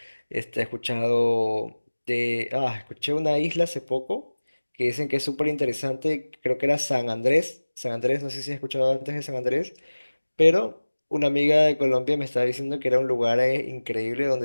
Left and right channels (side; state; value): both; inverted; correlation -1.00